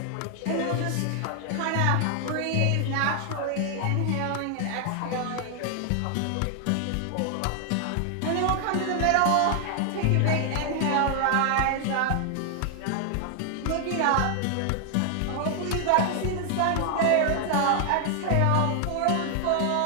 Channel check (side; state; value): both; different; correlation 0.00